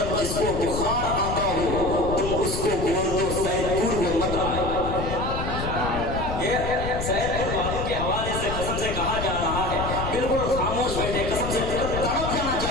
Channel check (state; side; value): noise; left; rumble, 5 dB below the sound